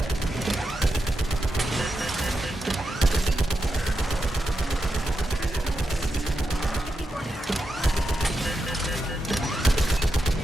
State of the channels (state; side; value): normal; both; correlation 0.87